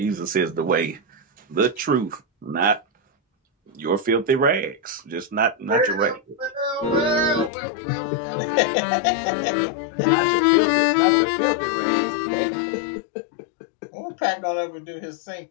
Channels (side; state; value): right; drops out; at 7.5 s